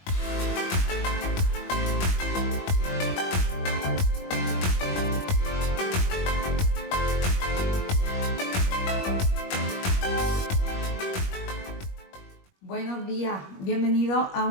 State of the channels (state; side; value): late; right; 21 ms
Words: Buenos días, bienvenidos a